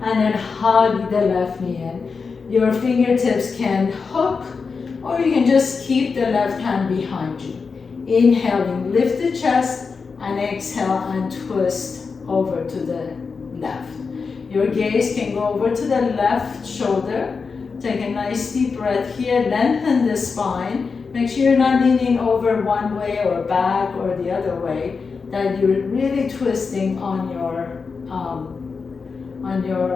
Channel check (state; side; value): quieter; right; 5.0 dB